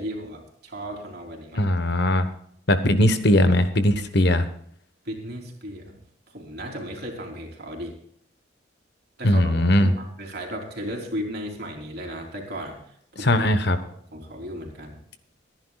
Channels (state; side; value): normal; both; correlation 0.67